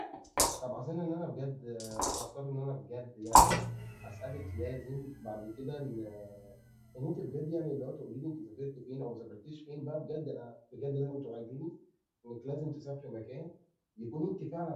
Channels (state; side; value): identical; both; correlation 1.00